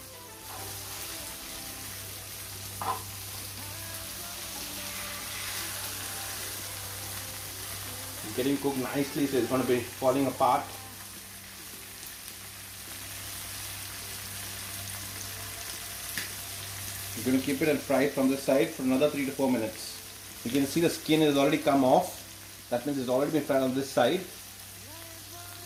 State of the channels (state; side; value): identical; both; correlation 1.00